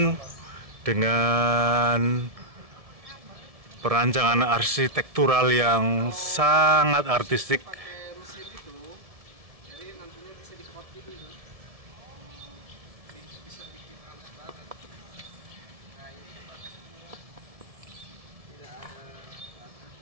dengan perancangan arsitektural yang sangat artistik.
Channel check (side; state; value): left; late; 1.7 ms